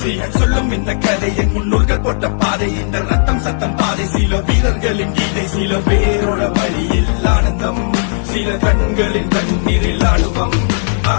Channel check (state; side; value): silent; right; digital silence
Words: சொல்லும் இந்த கதை என் முன்னோர்கள் போட்ட பாதை. இந்த ரத்தம் சத்தம் பாதை. சில வீரர்களின் கீதை, சில பேரோட வழியில் ஆனந்தம், சில கண்களின் கண்ணீரில் ஆளுவம்.